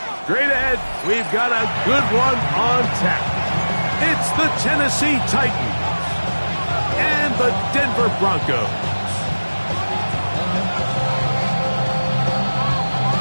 Straight ahead, we've got a good one on tap. It's the Tennessee Titans and the Denver Broncos.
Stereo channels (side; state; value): both; inverted; correlation -1.00